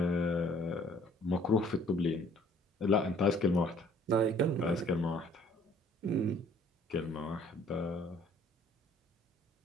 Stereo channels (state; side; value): normal; both; correlation 0.57